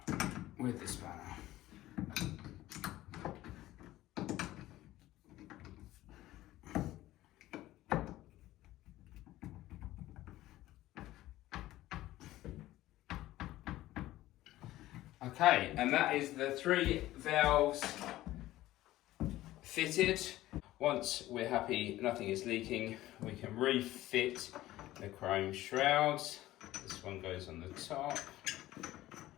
with the spanner. Okay, and that is the 3 valves fitted. Once we're happy nothing is leaking, we can refit the chrome shrouds. This one goes on the top.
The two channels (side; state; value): right; quieter; 15.8 dB